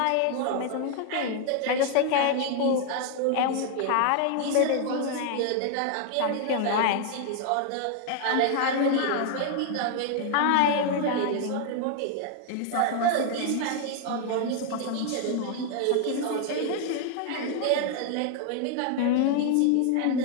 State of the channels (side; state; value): both; different; correlation 0.00